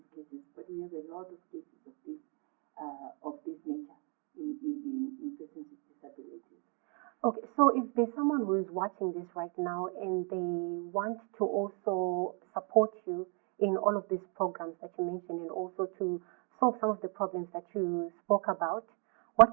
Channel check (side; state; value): left; quieter; 37.0 dB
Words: cases. But we have a lot of cases of this nature in persons with disabilities. Okay, so if there's someone who is watching this right now and they want to also support you in all of these programs that you mentioned and also to solve some of the problems that you spoke about,